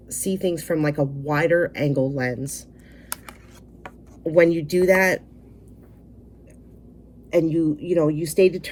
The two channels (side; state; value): both; identical; correlation 1.00